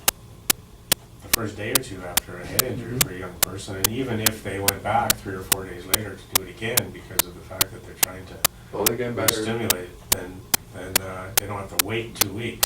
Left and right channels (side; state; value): both; identical; correlation 1.00